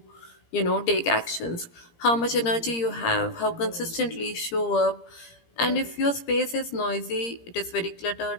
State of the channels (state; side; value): late; right; 17 ms